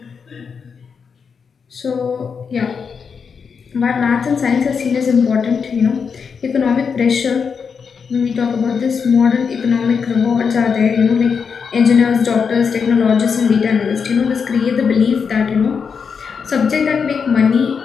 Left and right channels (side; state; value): right; quieter; 6.0 dB